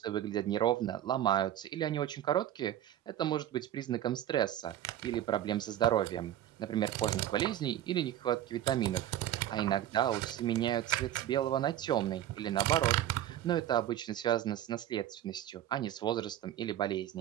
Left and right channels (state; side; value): quieter; left; 11.9 dB